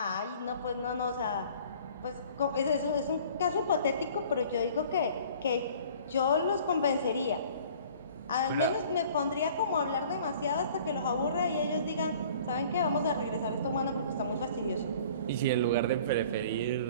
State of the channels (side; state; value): both; inverted; correlation -0.50